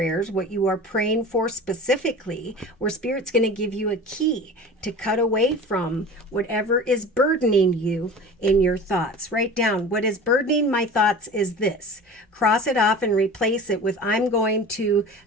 what you are praying for specifically, where Spirit's going to give you a key to cut away from whatever is burdening you in your thoughts. Write down, what is burdening my thoughts is this. Cross it off and replace it with, I'm going to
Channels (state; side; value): normal; both; correlation 0.37